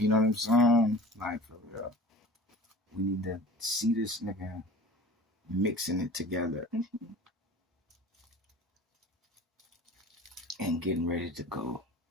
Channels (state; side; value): normal; both; correlation 0.41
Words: know what I'm saying? Like, for real. We need to see this nigga mixing it together and getting ready to go,